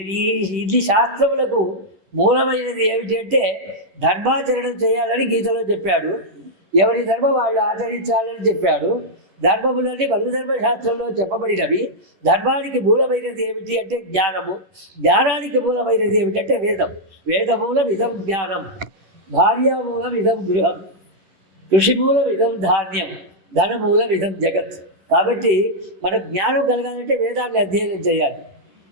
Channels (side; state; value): left; late; 10 ms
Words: ఇన్ని శాస్త్రములకు మూలమైనది ఏమిటి అంటే ధర్మాచరణం చేయాలని గీతలో చెప్పాడు. ఎవరి ధర్మం వాళ్ళు ఆచరించాలని చెప్పాడు. ధర్మములన్నీ మనుధర్మశాస్త్రంలో చెప్పబడినవి. ధర్మానికి మూలమైనది ఏమిటి అంటే జ్ఞానము, జ్ఞానానికి మూలమైనది ఏమిటంటే వేదం. వేదమూలం ఇదం జ్ఞానం, భార్యామూలం ఇదం గృహం, కృషిమూలం ఇదం ధాన్యం, ధనమూలం ఇదం జగత్. కాబట్టి మనకు జ్ఞానం కలగాలంటే వేదాన్ని అధ్యయనం చేయాలి.